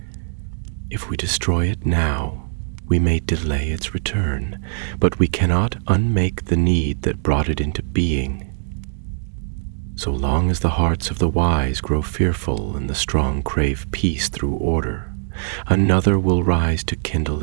"If we destroy it now, we may delay its return, but we cannot unmake the need that brought it into being. So long as the hearts of the wise grow fearful and the strong crave peace through order, another will rise to kindle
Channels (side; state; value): left; silent; digital silence